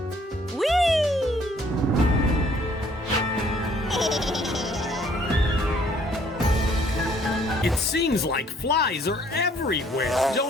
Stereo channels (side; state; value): both; normal; correlation 0.62